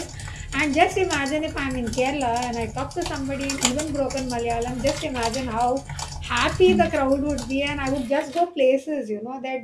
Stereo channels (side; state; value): both; identical; correlation 1.00